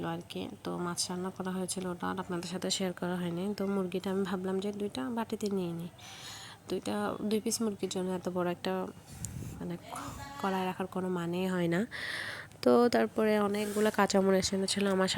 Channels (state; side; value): identical; both; correlation 1.00